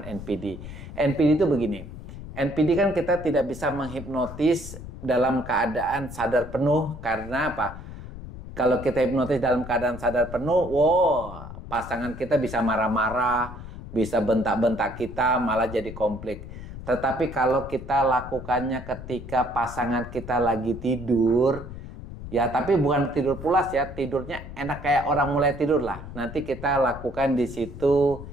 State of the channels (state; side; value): noise; left; rumble, 12 dB below the sound